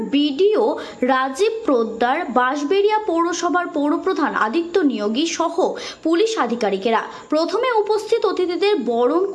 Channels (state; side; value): identical; both; correlation 1.00